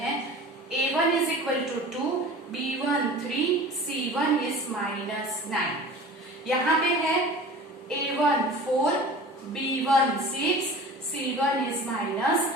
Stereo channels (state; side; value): normal; both; correlation 0.39